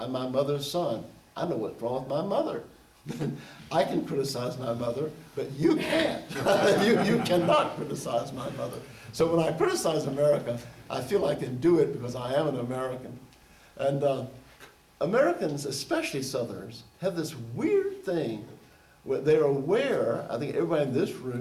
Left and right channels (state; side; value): identical; both; correlation 1.00